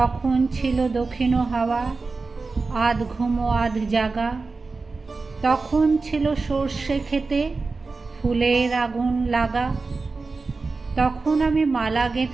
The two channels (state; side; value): quieter; left; 4.0 dB